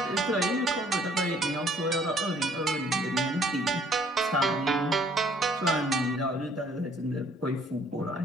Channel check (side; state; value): both; normal; correlation 0.61